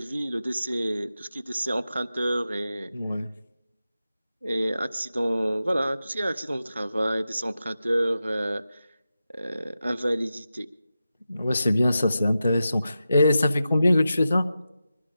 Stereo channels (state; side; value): inverted; both; correlation -0.91